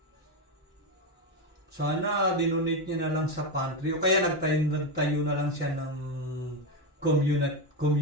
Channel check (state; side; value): normal; both; correlation 0.11